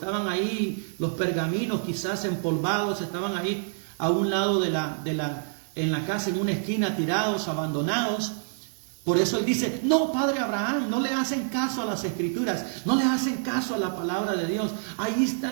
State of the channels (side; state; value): left; silent; digital silence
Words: ahí los pergaminos quizás empolvados, estaban ahí a un lado en la casa, en una esquina, tirados, abandonados. Por eso él dice, no, Padre Abraham, no le hacen caso a las escrituras, no le hacen caso a la palabra de Dios. Ahí